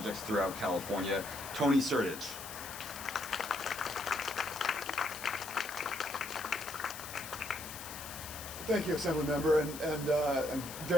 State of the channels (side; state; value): left; noise; hiss, 11 dB below the sound